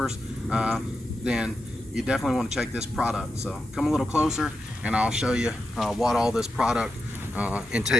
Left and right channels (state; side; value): normal; both; correlation 0.88